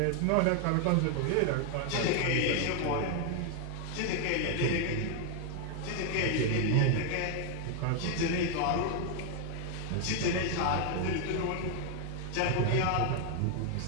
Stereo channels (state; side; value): different; both; correlation 0.00